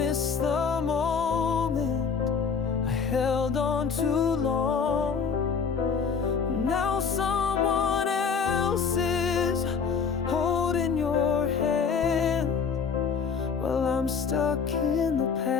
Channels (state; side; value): quieter; right; 5.9 dB